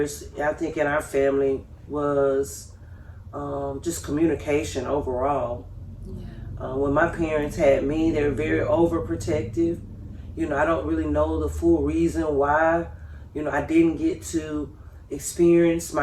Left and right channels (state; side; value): identical; both; correlation 1.00